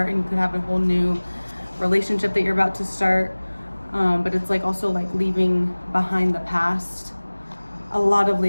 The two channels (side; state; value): both; inverted; correlation -1.00